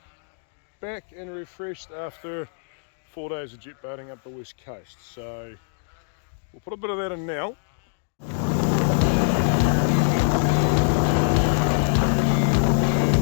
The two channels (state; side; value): silent; right; digital silence